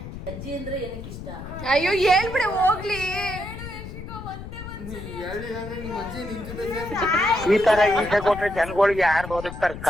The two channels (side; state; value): left; noise; rumble, 11 dB below the sound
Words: ಅಜ್ಜಿ ಅಂದ್ರೆ ಏನಕ್ಕೆ ಇಷ್ಟ? ಅಯ್ಯೋ ಹೇಳ್ಬಿಡೆ ಹೋಗ್ಲಿ. ಹೇಳಿಲ್ಲ ಅಂದ್ರೆ ನಿಮ್ಮ ಅಜ್ಜಿ ನಿನ್ ಜೊತೆ ಈ ತರ ಈಸೆ ಕೊಟ್ರೆ ಜನಗಳಿಗೆ ಯಾರು ಬದುಕ್ತಾರಕ್ಕ?